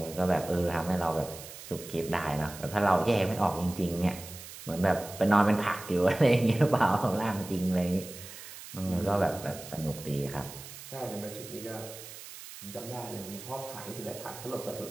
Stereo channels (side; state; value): right; noise; hiss, 14 dB below the sound